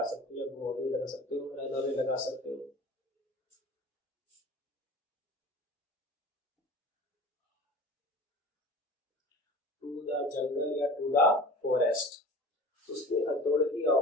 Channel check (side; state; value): both; normal; correlation 0.39